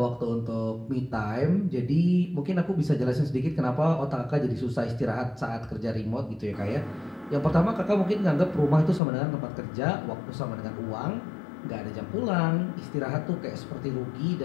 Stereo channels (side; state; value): right; drops out; at 9.0 s